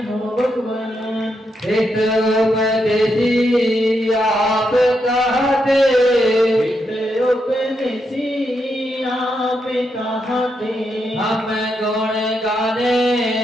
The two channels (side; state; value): both; normal; correlation 0.82